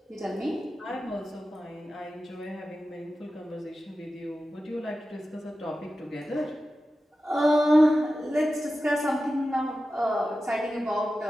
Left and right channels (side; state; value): both; normal; correlation 0.93